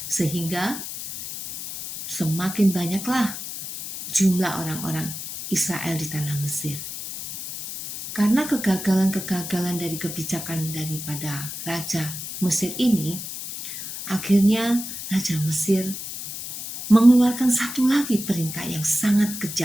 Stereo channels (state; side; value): noise; left; hiss, 8 dB below the sound